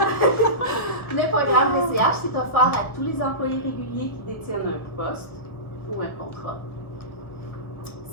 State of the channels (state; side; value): late; right; 1.2 ms